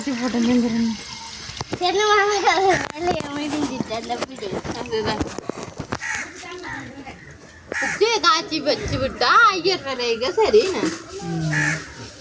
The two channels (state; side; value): identical; both; correlation 1.00